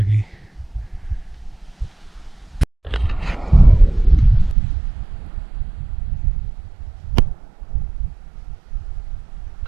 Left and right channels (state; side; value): drops out; left; at 4.5 s